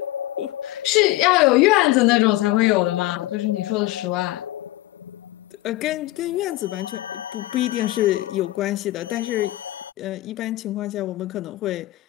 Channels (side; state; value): right; quieter; 17.0 dB